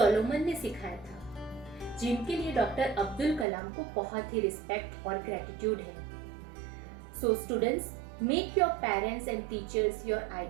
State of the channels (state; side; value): drops out; left; at 3.5 s